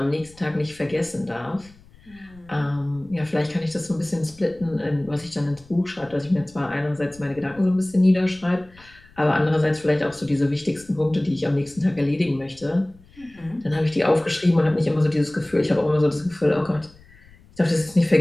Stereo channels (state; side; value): noise; left; rumble, 25 dB below the sound